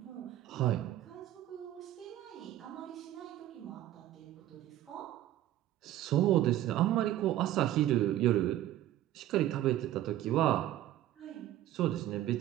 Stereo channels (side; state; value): left; quieter; 13.4 dB